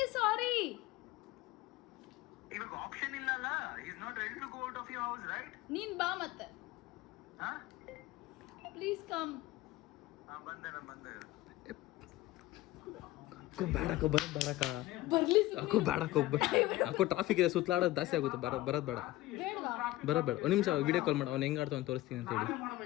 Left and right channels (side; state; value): right; quieter; 17.2 dB